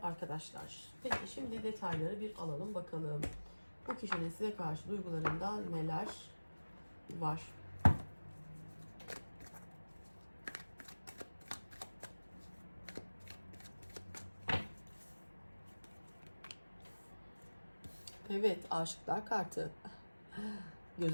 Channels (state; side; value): inverted; both; correlation -1.00